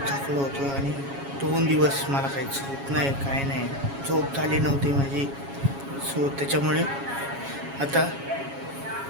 थकलो होतो आणि 2 दिवस मला काही झोप नाही, काय नाही, झोप झाली नव्हती माझी. सो त्याच्यामुळे आता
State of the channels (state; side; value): late; left; 7.2 ms